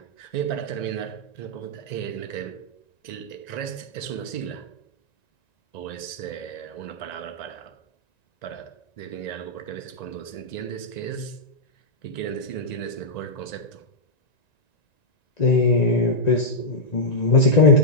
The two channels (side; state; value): right; late; 1.9 ms